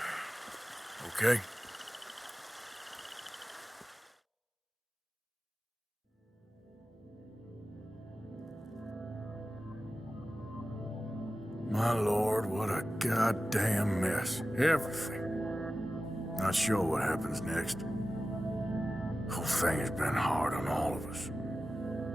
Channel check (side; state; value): both; normal; correlation 0.94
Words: Okay. My lord, what a goddamn mess. Everything. Not sure what happens next. Whole thing has been hard on all of us.